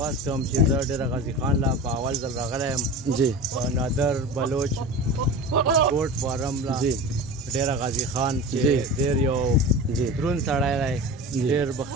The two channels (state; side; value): normal; both; correlation 0.31